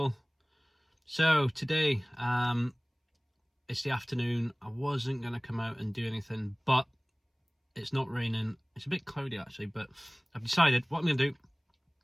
So today, it's the afternoon. I wasn't going to come out and do anything, but it's not raining. It's a bit cloudy actually, but I've decided what I'm going to do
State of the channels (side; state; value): both; identical; correlation 1.00